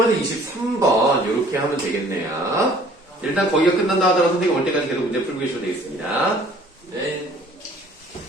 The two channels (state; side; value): normal; both; correlation 0.54